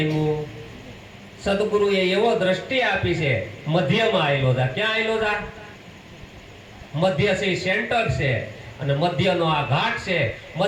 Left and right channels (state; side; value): identical; both; correlation 1.00